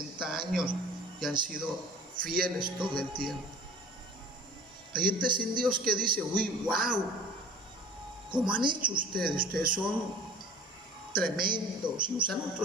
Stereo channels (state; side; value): normal; both; correlation 0.43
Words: años y han sido fieles todo el tiempo. Hay gente sin Dios que dice, uy, wow, ¿cómo han hecho ustedes? Ustedes son tremendos, y usan